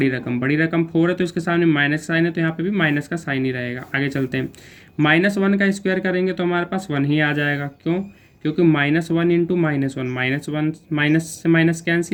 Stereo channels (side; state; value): both; identical; correlation 1.00